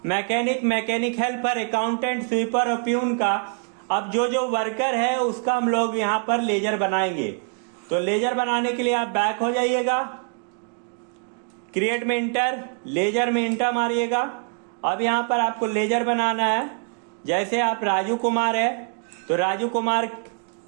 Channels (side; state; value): left; quieter; 40.0 dB